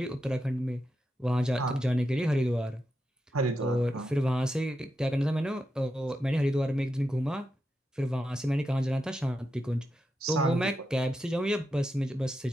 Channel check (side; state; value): both; normal; correlation 0.87